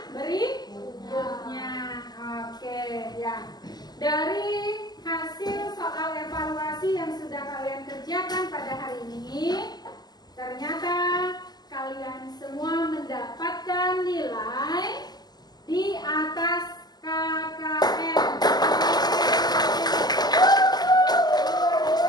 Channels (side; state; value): right; late; 0.20 ms